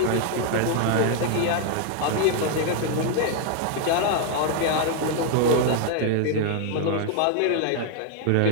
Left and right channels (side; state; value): both; different; correlation 0.00